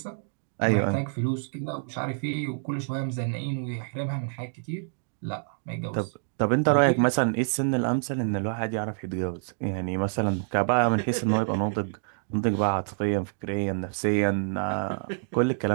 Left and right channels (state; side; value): silent; left; digital silence